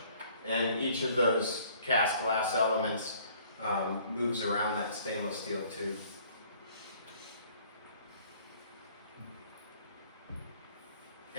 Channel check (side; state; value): both; inverted; correlation -0.57